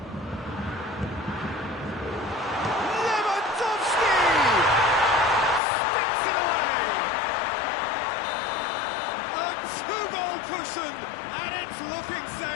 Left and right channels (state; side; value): drops out; right; at 5.6 s